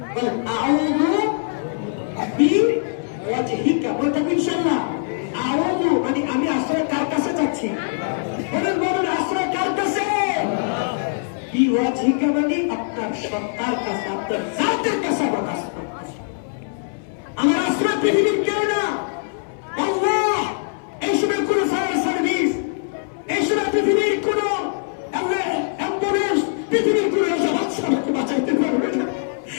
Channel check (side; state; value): right; silent; 60 dB below the other